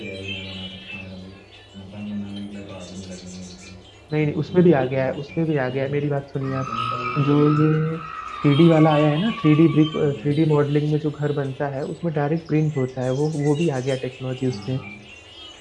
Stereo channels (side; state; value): both; identical; correlation 1.00